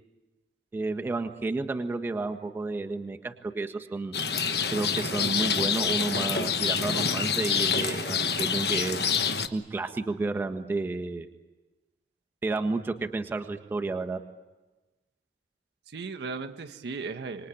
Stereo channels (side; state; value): both; normal; correlation 0.41